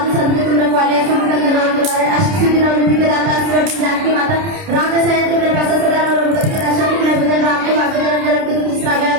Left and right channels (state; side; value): late; left; 30 ms